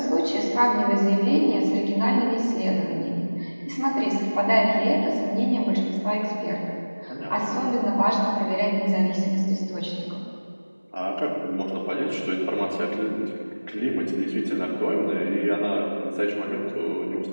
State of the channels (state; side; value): inverted; both; correlation -1.00